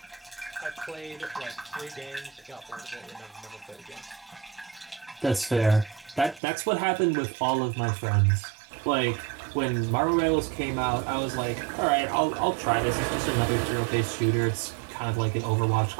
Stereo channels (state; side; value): drops out; left; at 6.4 s